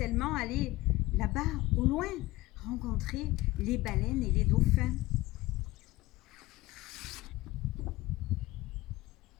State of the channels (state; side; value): quieter; right; 18.8 dB